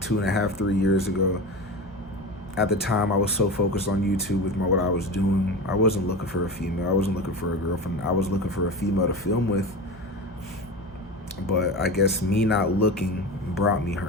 3 years ago. At the time, I was so focused on YouTube with what I was doing. I wasn't looking for a female. I wasn't looking for a girlfriend. I was looking for a female to film with. But I guess me not looking brought me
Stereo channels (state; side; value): normal; both; correlation 0.27